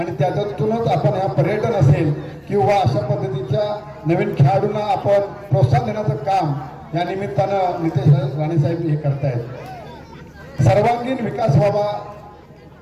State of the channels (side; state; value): both; identical; correlation 1.00